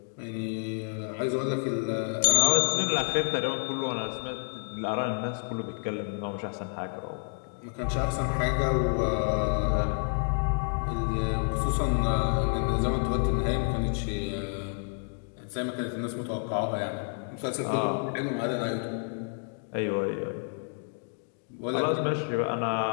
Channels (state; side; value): silent; right; 56 dB below the other